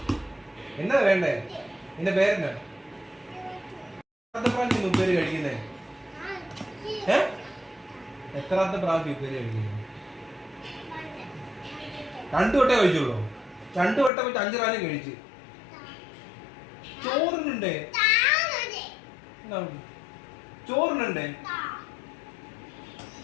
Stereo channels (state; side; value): drops out; right; at 14.1 s